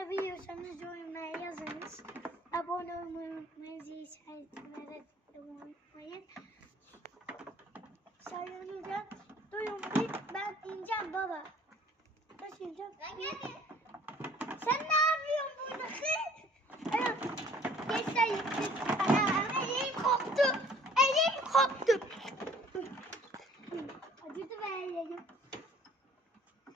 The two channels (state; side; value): normal; both; correlation 0.54